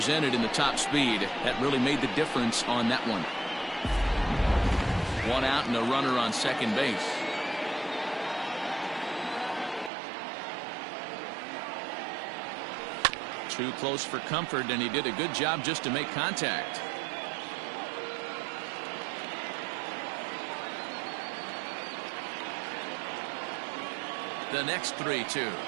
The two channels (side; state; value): left; drops out; at 9.9 s